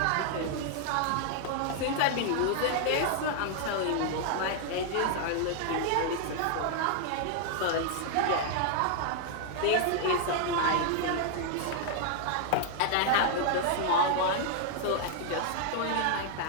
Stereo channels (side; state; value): both; different; correlation 0.00